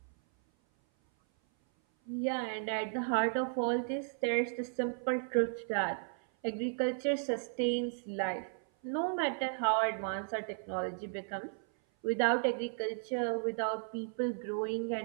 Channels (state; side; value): silent; left; 55 dB below the other